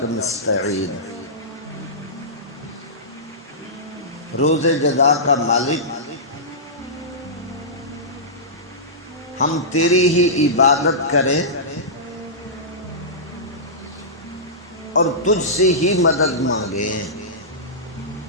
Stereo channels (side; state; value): both; normal; correlation -0.17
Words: نستعین۔ روز جزا کا مالک، ہم تیری ہی عبادت کریں اور تجھ سے ہی مدد مانگیں۔